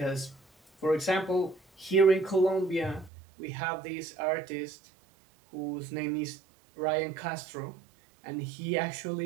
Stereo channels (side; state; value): left; drops out; at 3.1 s